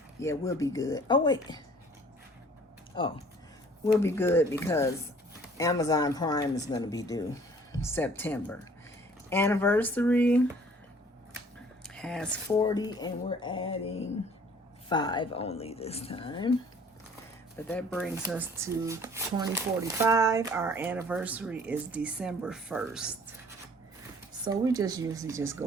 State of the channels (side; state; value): both; normal; correlation 0.54